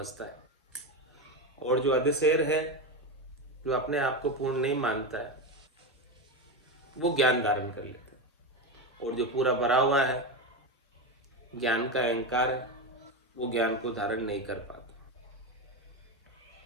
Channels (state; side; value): normal; both; correlation 0.16